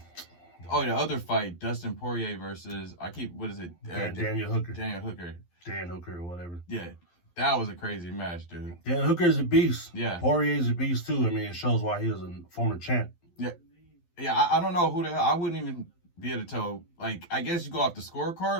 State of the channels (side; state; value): right; late; 12 ms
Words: other fight, Dustin Poirier versus what is it? Daniel Hooker. Dan Hooker or whatever. Yeah. That was a crazy match, dude. Dan Hooker's a beast. Yeah. Poirier's a beast, too. I mean, it shows why he was a former champ. Yeah. Yeah, I don't know who the hell. I wouldn't even be able to tell. Like, I guess you go off the